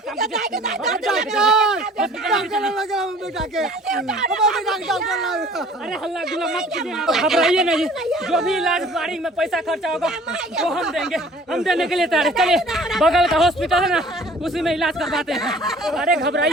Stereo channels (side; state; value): both; normal; correlation 0.51